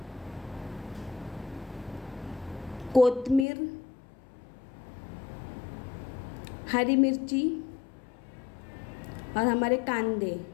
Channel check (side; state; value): right; drops out; at 3.5 s